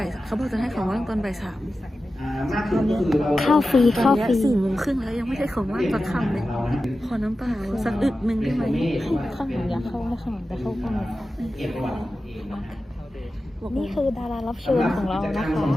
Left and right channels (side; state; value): both; normal; correlation 0.93